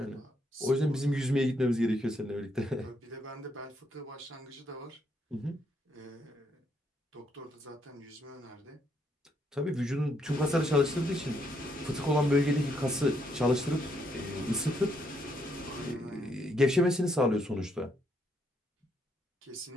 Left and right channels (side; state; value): both; normal; correlation 0.74